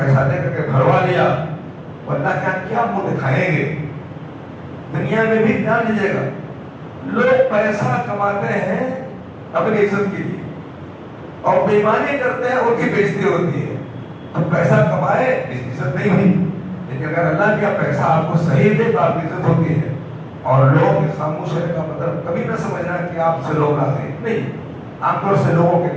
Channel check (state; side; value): identical; both; correlation 1.00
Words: دے کر کے بھروا لیا، ورنہ کیا منہ دکھائیں گے؟ دنیا میں بھی دھیان دیجیے گا، لوگ پیسہ کماتے ہیں اپنی عزت کے لیے اور بےمانی کرتے ہیں، ان کی بےزتی ہوتی ہے۔ تو پیسہ کمائے عزت نہیں ہوئی، لیکن اگر اللہ کا پیسہ آپ کو صحیح دے تو آپ کی عزت ہوتی ہے۔ اور لوگوں کے خاموش ہونے کا مطلب کبھی نہ سمجھنا کہ آپ سے لوگ راضی ہیں، نہیں، عام طور سے لوگوں کے